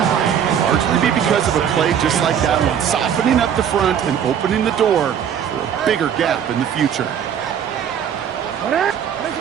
largely be because of a play just like that one, softening up the front and opening the door for a bigger gap in the future.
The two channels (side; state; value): left; quieter; 8.6 dB